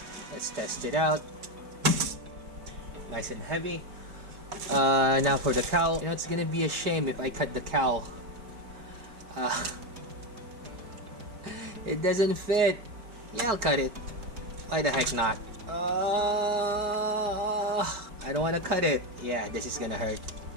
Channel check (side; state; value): left; late; 4.8 ms